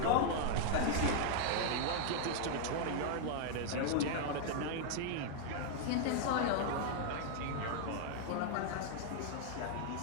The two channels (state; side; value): different; both; correlation 0.00